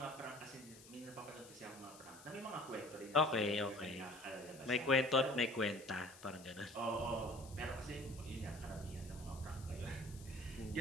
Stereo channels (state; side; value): noise; left; hiss, 18 dB below the sound